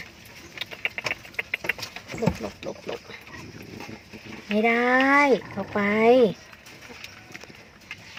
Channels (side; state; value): both; identical; correlation 1.00